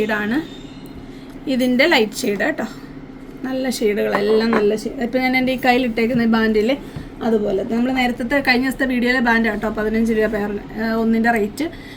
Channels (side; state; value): both; identical; correlation 1.00